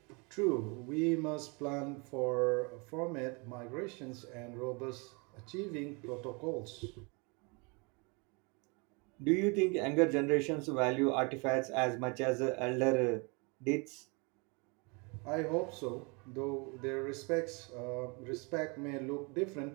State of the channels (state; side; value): quieter; left; 31.1 dB